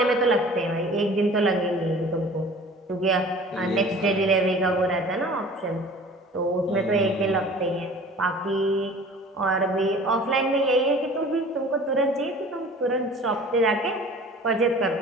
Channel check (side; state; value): both; normal; correlation 0.45